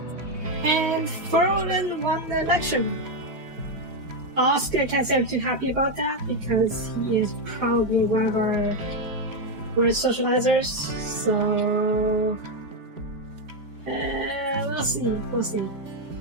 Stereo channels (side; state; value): left; late; 4.8 ms